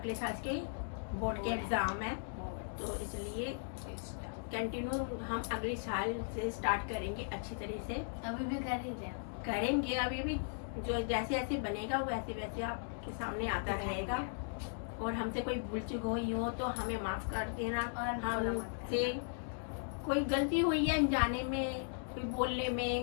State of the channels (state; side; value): silent; right; digital silence